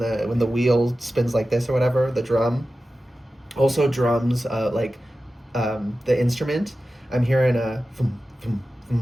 wheel spins like this or whatever. The drum. Also drums, the instrument. I'm hearing a thum, thum,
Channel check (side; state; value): both; normal; correlation 0.94